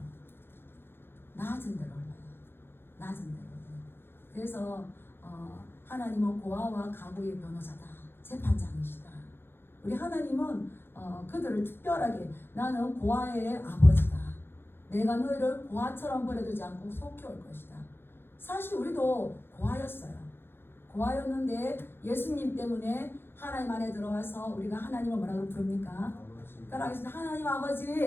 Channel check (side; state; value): right; late; 0.11 ms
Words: 낮은 데로 흘러요. 낮은 데로 흘러요. 그래서 하나님은 고아와 가부의 변호사다. 재판장이시다. 우리 하나님은 그들을 특별하게 나는 고아의 아버지다. 내가 너희를 고아처럼 버려두지 않고 속혀올 것이다. 사실 우리도 고아였어요. 고아였는데 예수님 때문에 하나님 안에 들어와서 우리가 하나님을 뭐라고 부릅니까? 따라하겠습니다. 하나님